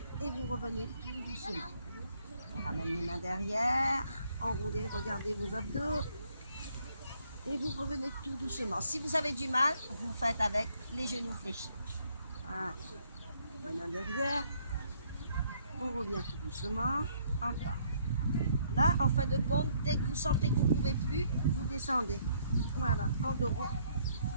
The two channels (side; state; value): both; inverted; correlation -0.67